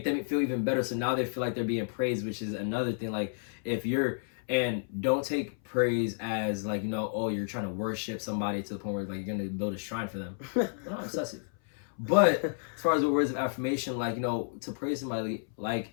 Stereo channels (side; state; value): right; silent; 57 dB below the other